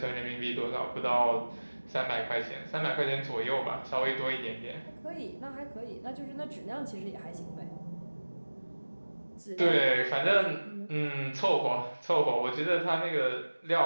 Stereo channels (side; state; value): both; inverted; correlation -1.00